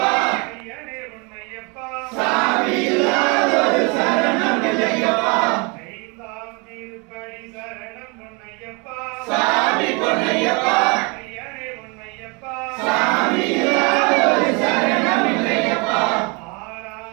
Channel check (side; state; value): left; quieter; 30.5 dB